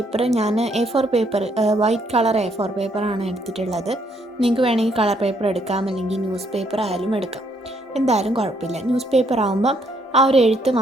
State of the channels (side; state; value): both; normal; correlation 0.71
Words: ഞാൻ A4 paper, white colour A4 പേപ്പറാണ് എടുത്തിട്ടുള്ളത്. നിങ്ങൾക്ക് വേണമെങ്കിൽ കളർ പേപ്പർ എടുക്കാം, അല്ലെങ്കിൽ ന്യൂസ് പേപ്പർ ആയാലും എടുക്കാം, എന്തായാലും കുഴപ്പമില്ല. ന്യൂസ് പേപ്പർ ആകുമ്പം ആ ഒരു എഴുത്ത്